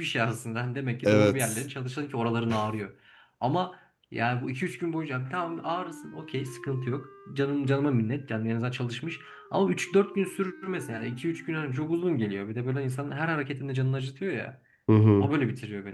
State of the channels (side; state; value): both; identical; correlation 1.00